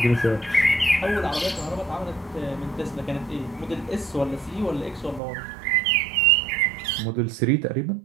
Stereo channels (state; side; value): drops out; left; at 5.2 s